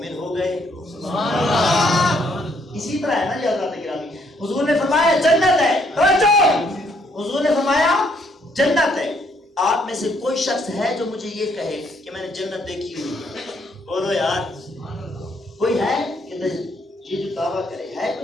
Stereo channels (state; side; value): normal; both; correlation 0.69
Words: ہو گئے۔ اسی طرح ہے نا یہ حضرات گرامی، حضور نے فرمایا جنت ہے، حضور نے فرمایا جنت ہے۔ آپ میں سے کوئی شخص ہے جو مجھے یہ کہے کہ میں نے جنت دیکھی ہوئی ہے؟ بولو یار، کوئی ہے کہ یہ جو دعویٰ کرے؟ ہے